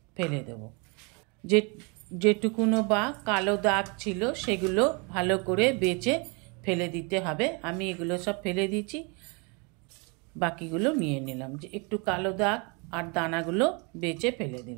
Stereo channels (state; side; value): quieter; left; 31.9 dB